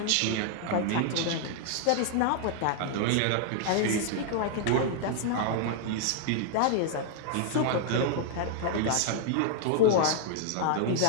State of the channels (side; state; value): both; different; correlation 0.00